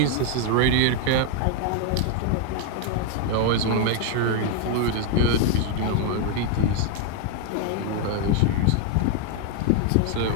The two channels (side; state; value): both; different; correlation 0.01